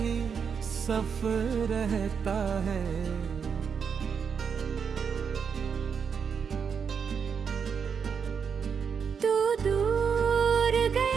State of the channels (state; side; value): quieter; left; 6.6 dB